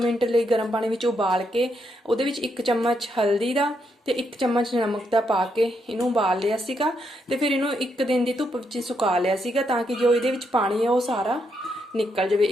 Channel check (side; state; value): both; normal; correlation 0.78